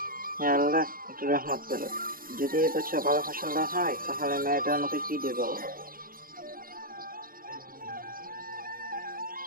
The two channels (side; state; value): left; late; 0.41 ms